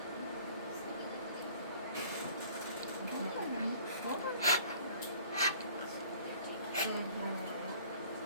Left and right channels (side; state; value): both; inverted; correlation -0.51